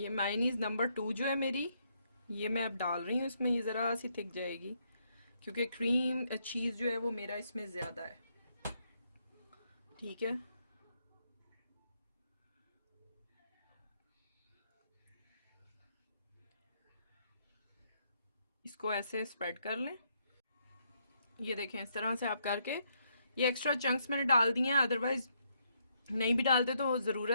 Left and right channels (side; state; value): both; inverted; correlation -0.75